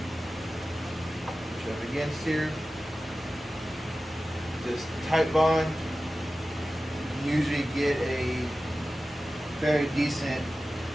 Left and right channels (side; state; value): both; normal; correlation 0.95